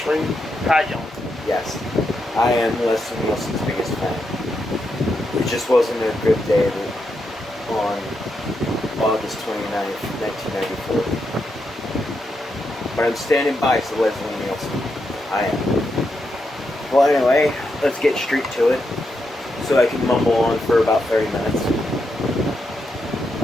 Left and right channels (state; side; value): normal; both; correlation 0.83